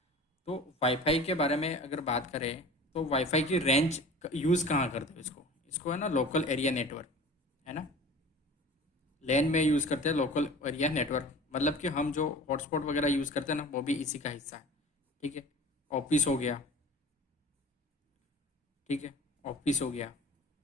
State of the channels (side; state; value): both; normal; correlation 0.40